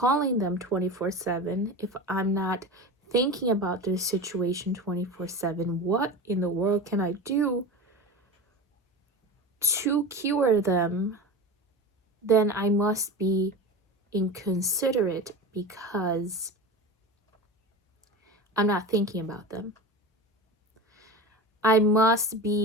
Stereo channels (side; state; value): both; normal; correlation 0.28